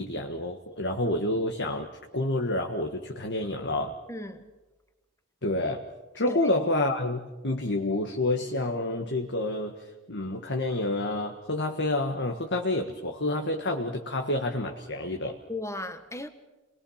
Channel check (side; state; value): both; normal; correlation -0.01